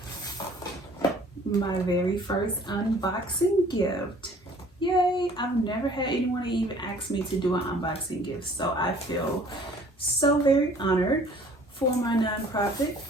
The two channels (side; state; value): both; normal; correlation 0.53